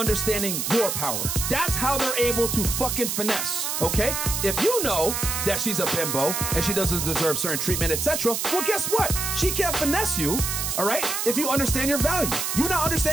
your power. That's how they're able to fucking finesse, okay? If you know that she's a bimbo and she doesn't deserve certain treatment, etc., well, guess what? She can't finesse you, all right? If you understand your value. You not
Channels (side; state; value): right; noise; hiss, 1 dB below the sound